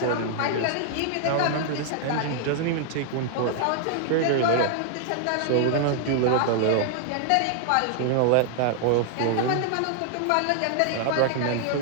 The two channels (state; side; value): different; both; correlation 0.00